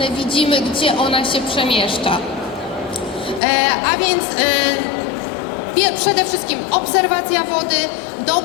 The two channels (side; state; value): right; drops out; at 3.4 s